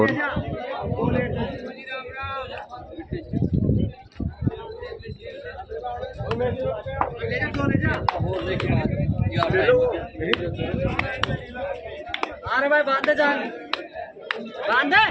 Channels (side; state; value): both; identical; correlation 1.00